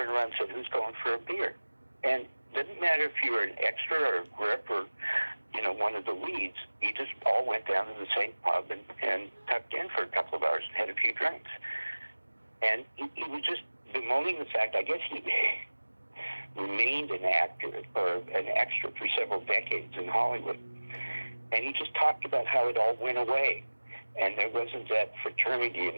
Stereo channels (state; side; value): inverted; both; correlation -1.00